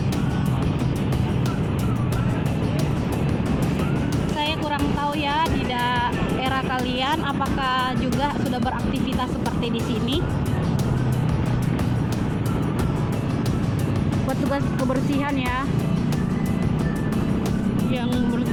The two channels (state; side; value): identical; both; correlation 1.00